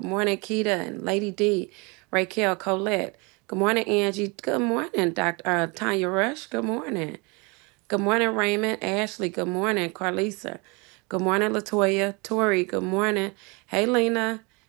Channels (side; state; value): left; quieter; 29.1 dB